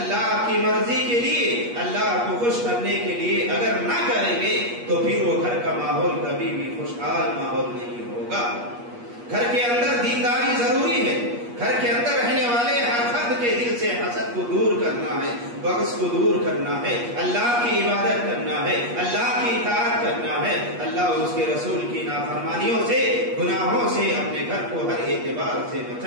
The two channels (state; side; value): late; left; 8.4 ms